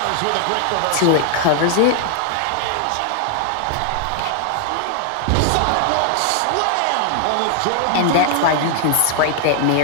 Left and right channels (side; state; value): both; different; correlation 0.00